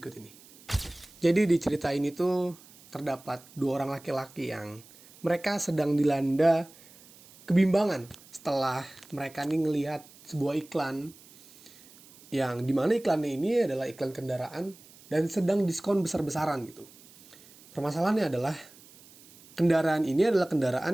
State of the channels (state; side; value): noise; right; hiss, 23 dB below the sound